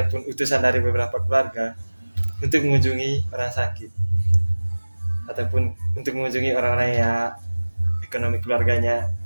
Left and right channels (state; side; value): inverted; both; correlation -1.00